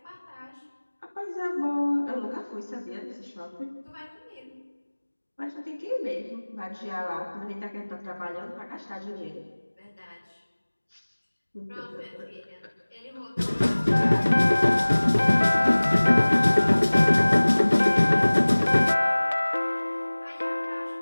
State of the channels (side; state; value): both; inverted; correlation -1.00